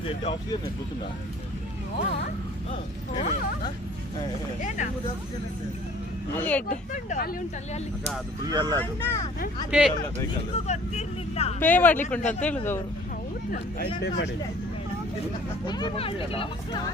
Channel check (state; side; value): normal; both; correlation 0.52